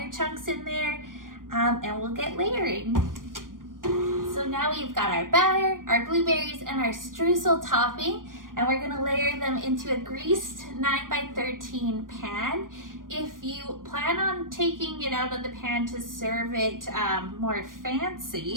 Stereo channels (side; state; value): left; late; 0.90 ms